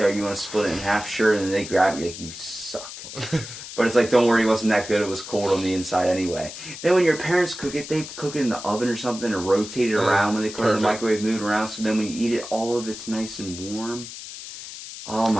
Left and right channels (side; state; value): left; noise; hiss, 11 dB below the sound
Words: You want to split it in half, sure, and then they grab you like, you suck. But it's like, don't worry, it wasn't that good. It was cold on the inside anyway. Then when your parents cook it, they cook it in the oven or something and rotate it around when they put it in the microwave, move it around. So then when you eat it, all of it's nice and warm. Oh